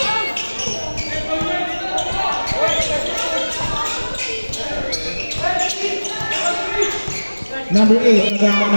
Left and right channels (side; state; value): both; inverted; correlation -1.00